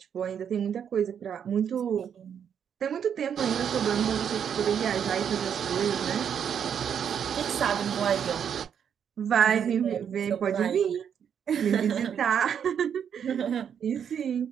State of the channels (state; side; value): quieter; left; 8.1 dB